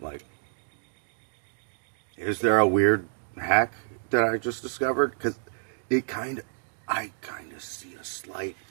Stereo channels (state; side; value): silent; left; digital silence